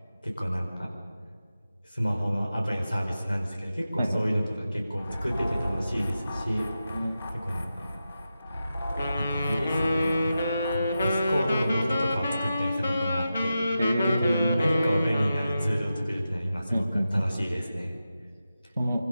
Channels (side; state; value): both; inverted; correlation -0.91